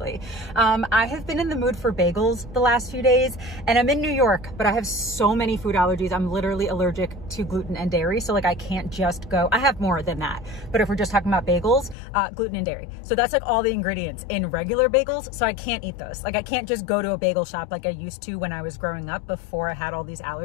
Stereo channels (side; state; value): right; drops out; at 12.0 s